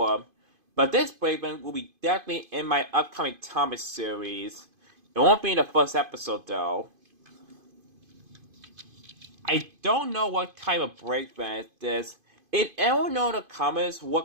But this brake van will be definitely in my upcoming Thomas series. It won't be in the first episode though. I don't know what type of brake van it is. If anyone know in the comments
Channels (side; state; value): left; late; 2.5 ms